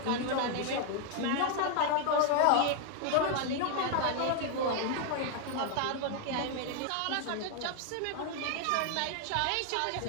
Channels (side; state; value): both; different; correlation 0.00